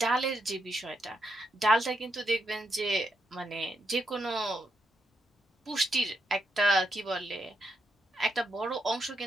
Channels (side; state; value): both; normal; correlation 0.81